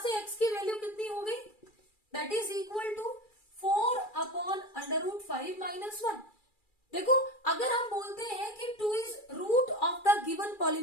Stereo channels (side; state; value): right; late; 2.3 ms